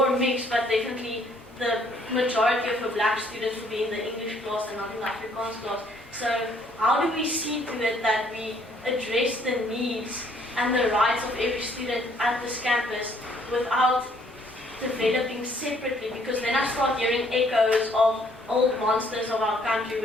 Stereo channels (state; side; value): normal; both; correlation 0.64